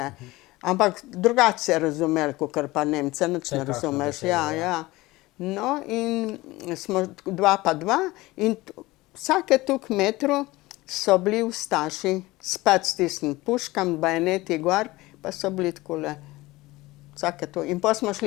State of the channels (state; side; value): quieter; right; 19.9 dB